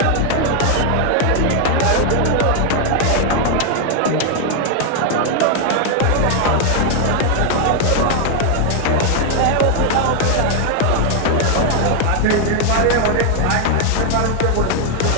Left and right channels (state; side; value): different; both; correlation 0.00